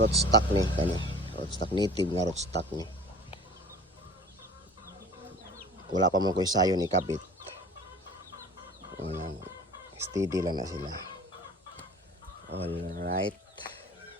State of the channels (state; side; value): normal; both; correlation 0.44